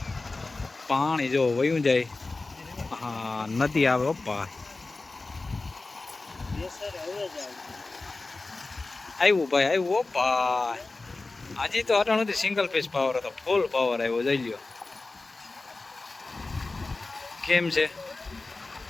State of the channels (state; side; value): quieter; right; 3.4 dB